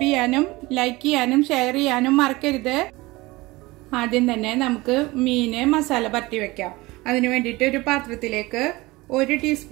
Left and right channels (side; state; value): left; quieter; 21.2 dB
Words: ചെയ്യാനും ലൈക്ക് ചെയ്യാനും ഷെയർ ചെയ്യാനും മറക്കരുത്. ആദ്യം തന്നെ നമുക്ക് മീന് മസാല പരട്ടി വെക്കാം. അതിന് വേണ്ടിയിട്ട് ഒരു പാത്രത്തിലേക്ക് 1